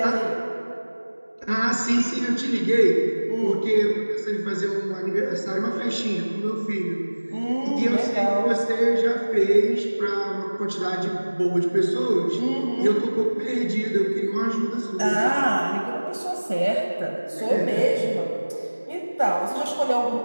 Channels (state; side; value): inverted; both; correlation -1.00